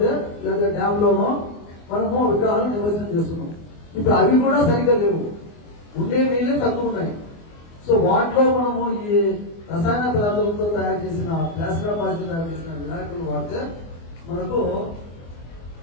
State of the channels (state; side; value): late; right; 24 ms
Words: లేదా డ్యామ్ లోనో మనము విగ్రహాలు నిమజ్జనం చేస్తున్నాం. ఇప్పుడు అవి కూడా సరిగ్గా లేవు, ఉండే నీళ్ళే తక్కువ ఉన్నాయి. సో వాటిలో మనము ఈ రసాయన పదార్థాలతో తయారు చేసిన ప్లాస్టర్ ఆఫ్ పారిస్ తయారు చేసిన వినాయకులు వాడితే మనకు